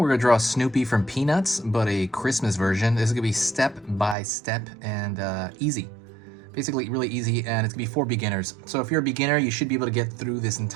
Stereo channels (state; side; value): drops out; left; at 4.2 s